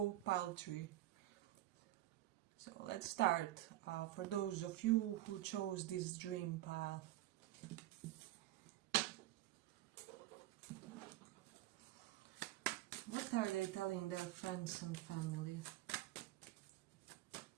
pile 3. So let's start. For those of you who chose this dream pile. What are they telling their friends and family?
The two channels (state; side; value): quieter; left; 15.5 dB